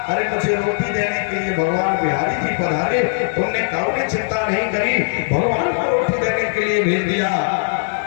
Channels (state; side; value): silent; right; digital silence